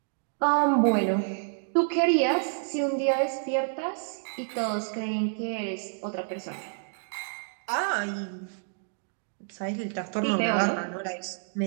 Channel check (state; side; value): silent; left; digital silence